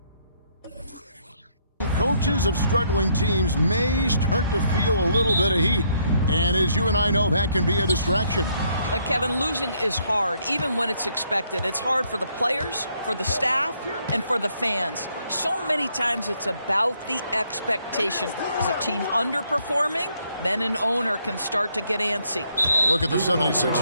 coaches of struggling teams may start to feel a little bit of heat. And as you and I know, that can be a distraction. Kevin, losing is hard, even when it's expected. It's hard for the players, for the staff, and for the fans. So many times it's about the expectation. Is a team underperforming? Then an owner can start to get antsy. Look at the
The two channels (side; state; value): both; inverted; correlation -0.70